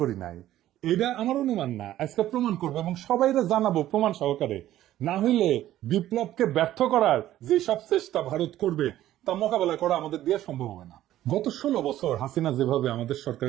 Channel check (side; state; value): left; quieter; 13.5 dB